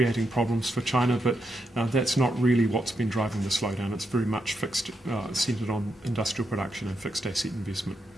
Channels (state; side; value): normal; both; correlation 0.82